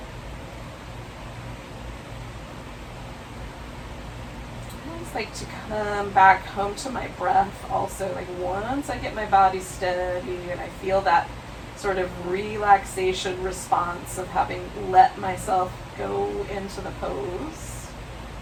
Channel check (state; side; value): identical; both; correlation 1.00